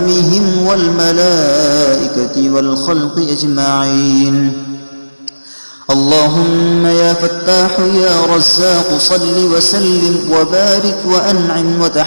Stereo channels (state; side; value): inverted; both; correlation -1.00